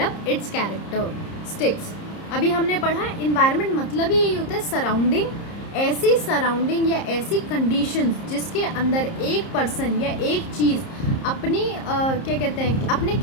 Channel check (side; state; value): right; late; 30 ms